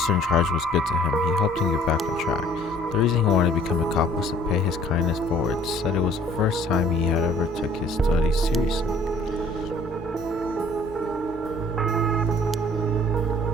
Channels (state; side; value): normal; both; correlation 0.55